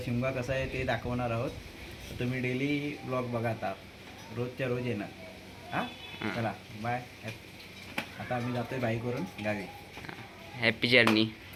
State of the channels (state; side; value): identical; both; correlation 1.00